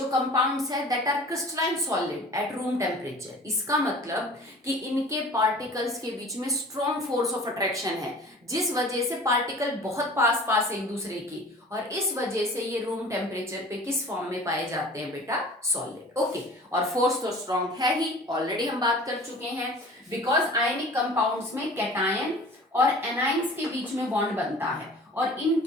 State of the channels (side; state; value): both; normal; correlation 0.44